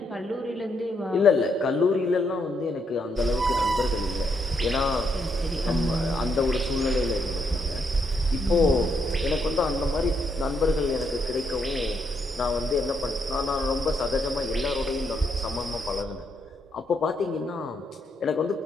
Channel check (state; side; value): normal; both; correlation 0.77